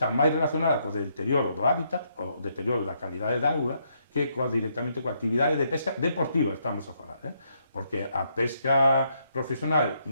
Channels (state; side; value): inverted; both; correlation -0.75